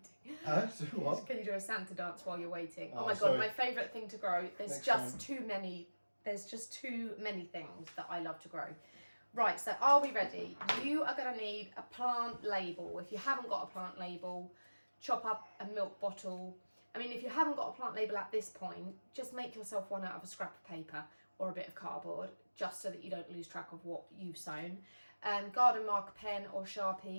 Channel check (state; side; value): inverted; both; correlation -1.00